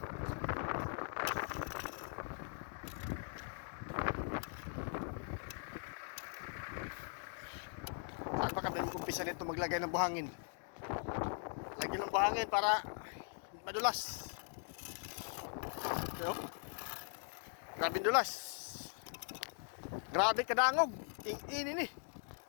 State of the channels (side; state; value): right; silent; 51 dB below the other